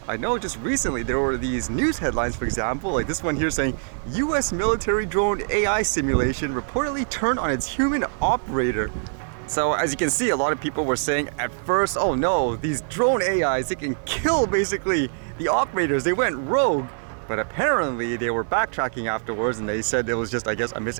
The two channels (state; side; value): silent; left; digital silence